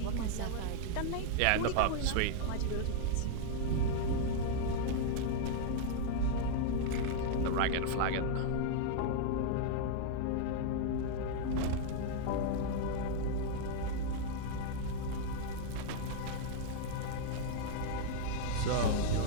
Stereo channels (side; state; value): both; different; correlation -0.01